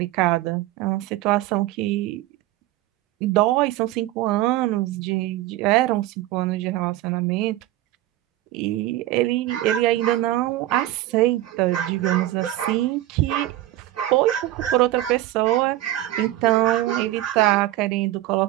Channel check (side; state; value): left; quieter; 15.2 dB